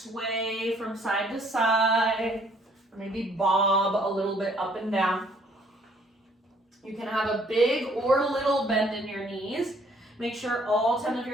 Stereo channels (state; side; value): normal; both; correlation 0.62